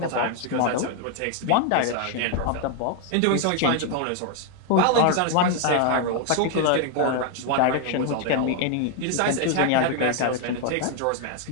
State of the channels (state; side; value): different; both; correlation 0.00